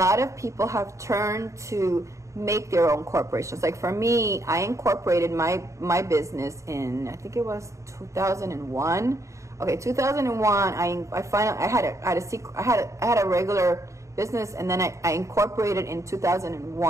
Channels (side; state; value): left; late; 0.15 ms